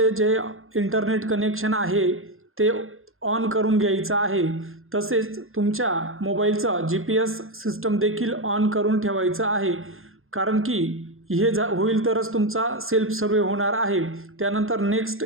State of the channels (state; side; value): late; left; 0.60 ms